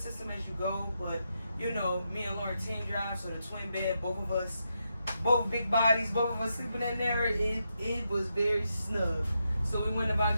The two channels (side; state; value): both; inverted; correlation -0.84